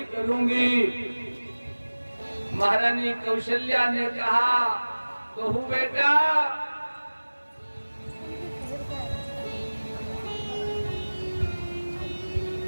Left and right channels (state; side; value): inverted; both; correlation -1.00